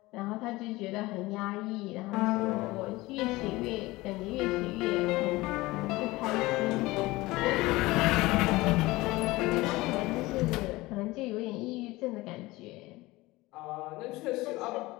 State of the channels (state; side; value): quieter; right; 20.2 dB